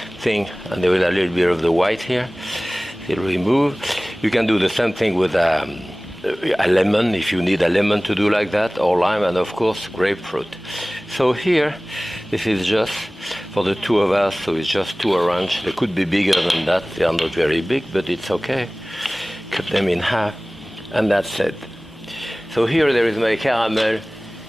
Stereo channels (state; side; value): normal; both; correlation 0.98